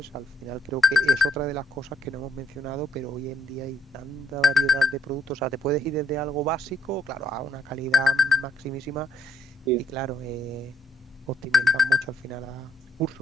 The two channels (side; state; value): both; normal; correlation 0.72